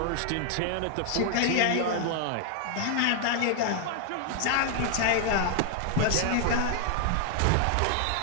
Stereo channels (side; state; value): both; different; correlation 0.00